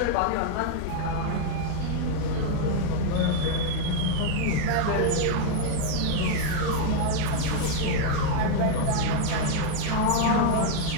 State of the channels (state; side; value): different; both; correlation 0.00